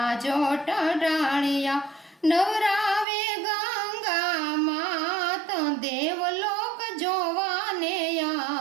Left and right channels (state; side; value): drops out; left; at 3.1 s